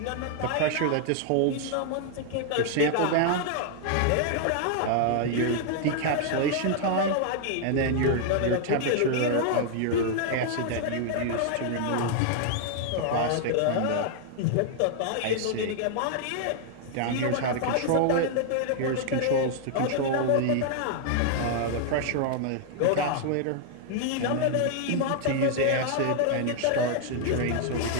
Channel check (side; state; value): both; different; correlation 0.00